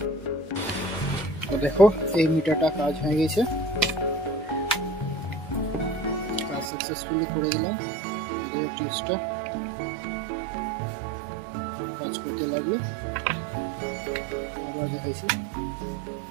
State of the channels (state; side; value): drops out; left; at 6.7 s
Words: তো দেখো এই মিটারটা কাজ হয়ে গেছে, কাজ সাকসেসফুলি করে দিলাম। এই টিপসটা কাজ করতে লাগলো, আবার দেখাইছি।